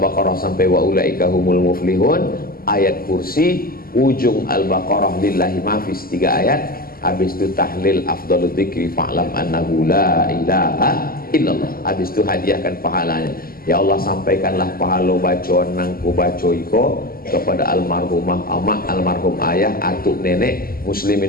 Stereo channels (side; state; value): right; late; 0.42 ms